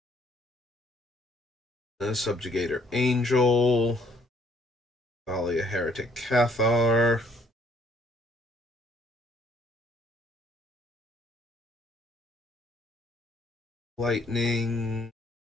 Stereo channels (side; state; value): both; normal; correlation 0.64